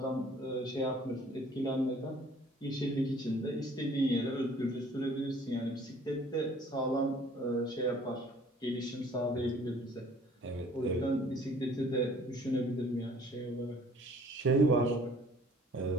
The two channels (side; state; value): both; normal; correlation 0.54